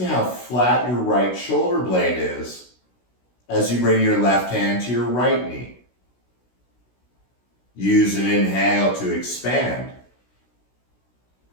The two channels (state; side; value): late; right; 16 ms